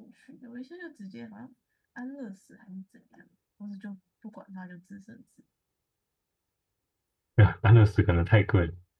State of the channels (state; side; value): identical; both; correlation 1.00